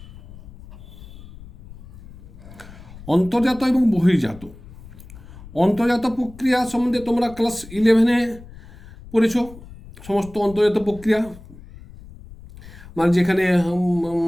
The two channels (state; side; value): noise; left; rumble, 18 dB below the sound